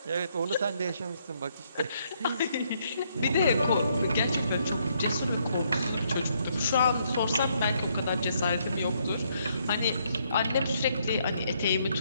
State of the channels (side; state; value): both; inverted; correlation -0.72